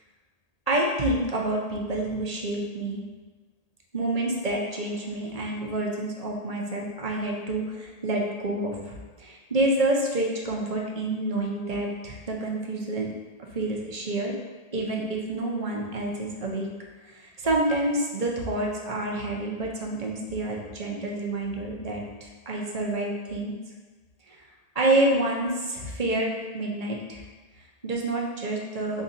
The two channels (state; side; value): late; right; 1.8 ms